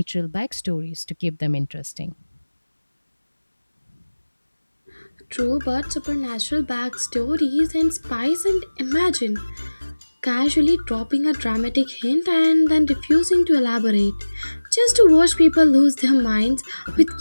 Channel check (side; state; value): both; inverted; correlation -1.00